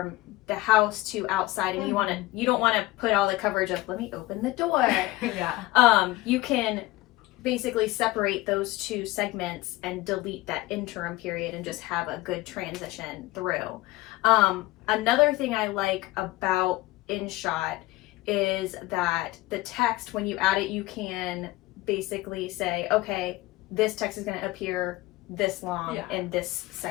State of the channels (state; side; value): quieter; right; 19.0 dB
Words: the house to outside, and you don't want to put all the coverage of, let me open the door. Yeah. You can basically separate those two segments and delete that interim period and just have a good transition through. Another thing I like about InShot is that the text, when you add it, you can basically say, okay, this text is going to appear this long in this